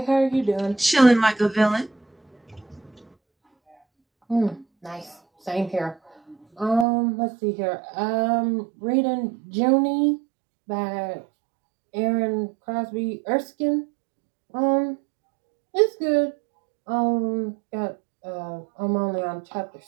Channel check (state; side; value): drops out; left; at 6.9 s